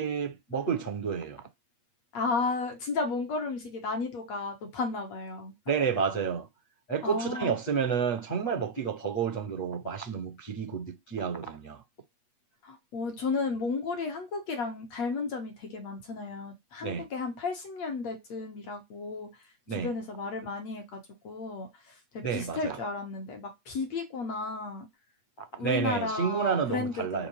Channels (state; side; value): late; right; 8.4 ms